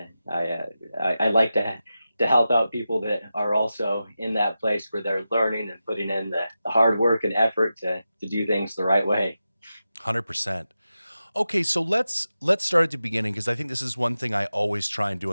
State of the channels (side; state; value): both; inverted; correlation -0.92